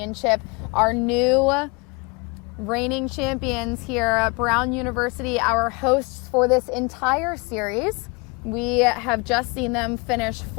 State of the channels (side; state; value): right; quieter; 28.7 dB